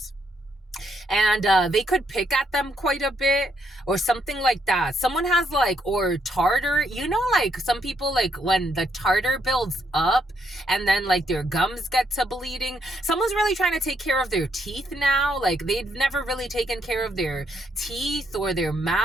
And they could pick at them quite a bit or something like that. Someone has like, or tartar, you know, like some people, like when the tartar builds up and then like their gums get to bleeding, someone's really trying to take care of their teeth now. Like they've never really taken care of their teeth or their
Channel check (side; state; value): both; normal; correlation 0.75